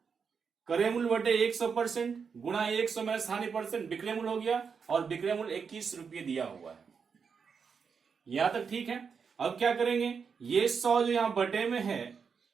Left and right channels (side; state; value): left; quieter; 6.0 dB